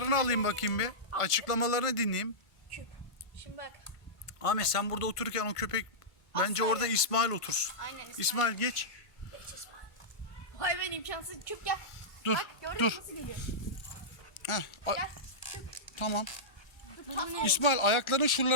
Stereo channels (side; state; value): right; late; 1.5 ms